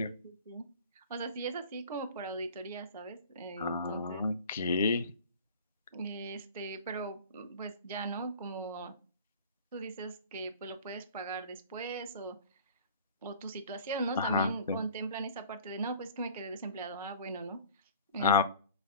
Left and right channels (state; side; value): inverted; both; correlation -0.43